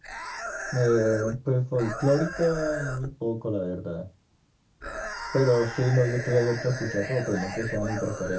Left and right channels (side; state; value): both; identical; correlation 1.00